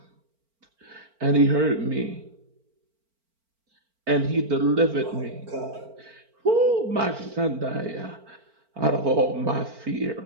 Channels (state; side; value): late; left; 4.4 ms